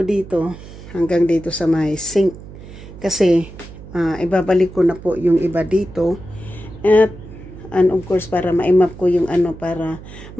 hanggang dito sa may sink. Kasi ibabalik ko na po yung iba dito. At and of course para ma-map ko yung para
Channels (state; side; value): noise; right; hum, 15 dB below the sound